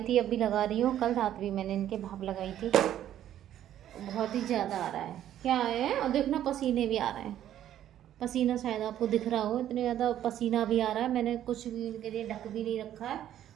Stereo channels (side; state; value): left; quieter; 11.5 dB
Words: थी, अब भी लगा रही हूँ, कल रात भी मैंने इनके भाप लगाई थी। बहुत ही ज़्यादा आ रहा है, क्या है, और देखना पसीने भी आ रहे हैं, पसीना शायद आपको दिख रहा हो, इतने ज़्यादा पसीना भी आ रहा है। मैंने कुछ भी इनके लिए ढक भी नहीं रखा है,